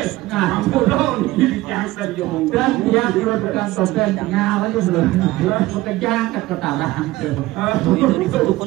ini jangan diomong dan dia bukan sopan tinggal aja belum bekerja ke ketaran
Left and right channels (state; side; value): quieter; left; 18.1 dB